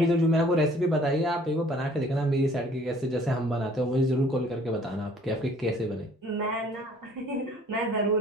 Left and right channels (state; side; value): normal; both; correlation 0.56